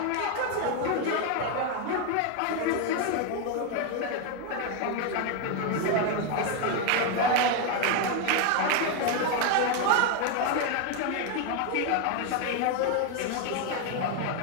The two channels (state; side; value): different; both; correlation 0.01